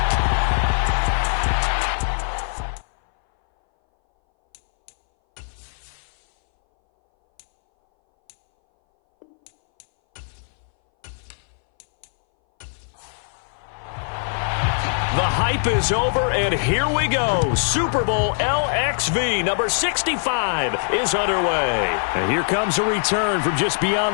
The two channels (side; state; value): right; silent; 61 dB below the other